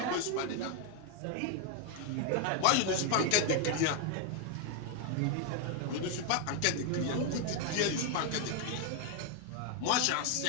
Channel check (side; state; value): both; different; correlation 0.01